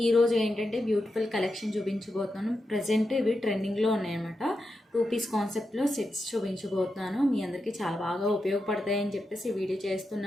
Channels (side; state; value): both; normal; correlation 0.88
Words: ఈరోజు ఏంటంటే బ్యూటిఫుల్ కలెక్షన్ చూపించబోతున్నాను. ప్రజెంట్ ఇవి ట్రెండింగ్లో ఉన్నాయన్నమాట. 2 పీస్ కాన్సెప్ట్లో సెట్స్ చూపించబోతున్నాను. మీ అందరికీ చాలా బాగా ఉపయోగపడతాయని చెప్పేసి వీడియో